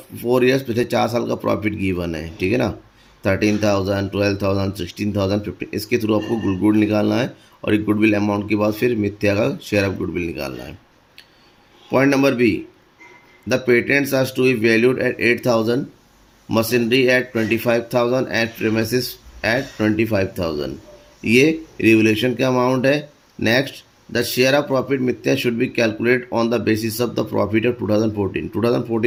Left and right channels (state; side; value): identical; both; correlation 1.00